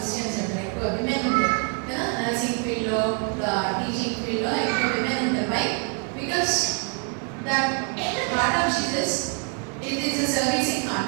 అంటే ఎక్కువ విమెన్ ఉంటారు కదా. నర్సింగ్ ఫీల్డ్లో, టీచింగ్ ఫీల్డ్లో ఎక్కువ విమెన్ ఉంటారు. Why? Because that part of Jesus it is a servicing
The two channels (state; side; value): quieter; left; 38.8 dB